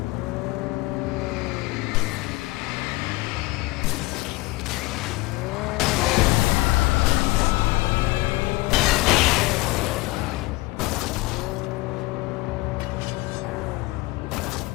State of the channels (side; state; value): right; quieter; 21.7 dB